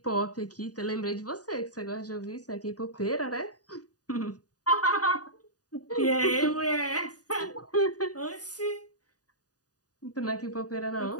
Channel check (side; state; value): right; late; 0.68 ms